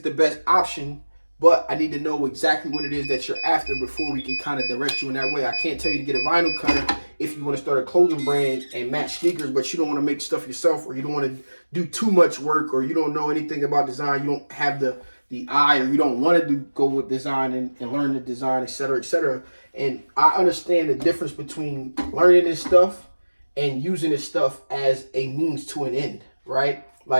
the best option, but I need to know exactly what it is that you're after before we can kind of direct you in that way. I can't tell you to get a vinyl cutter if you want to start a clothing brand and match sneakers, but you don't want to make stuff yourself, or you don't want to do too much work, or you don't know anything about design, you don't have the eye, or you don't want to go with design and learn the design, etc., etc. And I understand the difference between learning this stuff and using this stuff as a means to an end, right?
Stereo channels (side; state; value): both; inverted; correlation -1.00